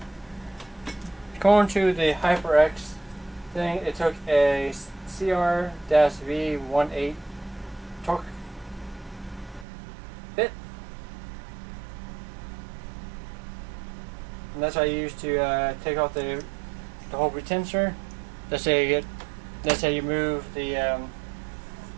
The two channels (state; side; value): drops out; left; at 9.7 s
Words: going to the HyperX thing, it took a CR-V18 torque bit, and that's what I use to take off the whole retention. That's how you move the